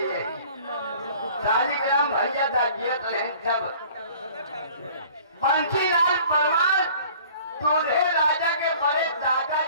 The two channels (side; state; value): both; inverted; correlation -0.50